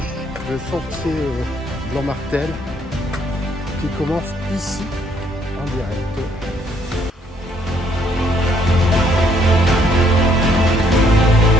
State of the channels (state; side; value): normal; both; correlation 0.68